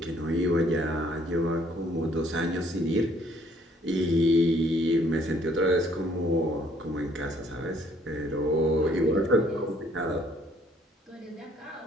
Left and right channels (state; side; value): normal; both; correlation 0.63